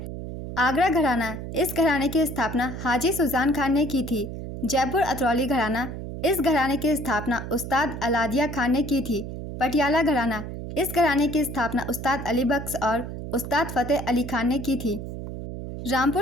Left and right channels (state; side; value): noise; right; hum, 8 dB below the sound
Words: आगरा घराना, इस घराने की स्थापना हाजी सुजान खान ने की थी। जयपुर अतरौली घराना, इस घराने की स्थापना उस्ताद अलादिया खान ने की थी। पटियाला घराना, इस घराने की स्थापना उस्ताद अली बख्श और उस्ताद फतेह अली खान ने की थी।